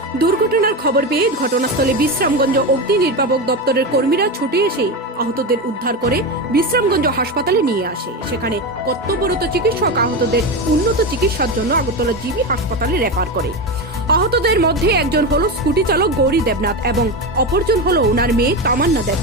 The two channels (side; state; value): both; normal; correlation 0.18